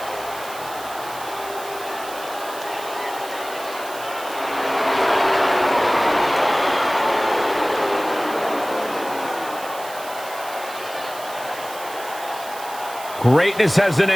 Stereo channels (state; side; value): noise; right; hiss, 14 dB below the sound